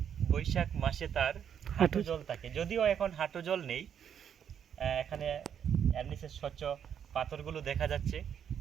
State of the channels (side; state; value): left; quieter; 8.5 dB